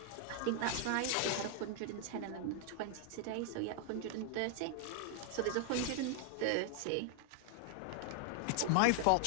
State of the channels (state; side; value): different; both; correlation 0.00